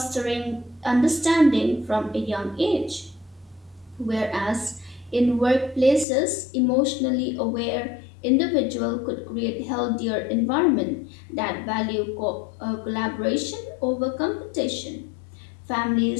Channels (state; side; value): drops out; right; at 6.1 s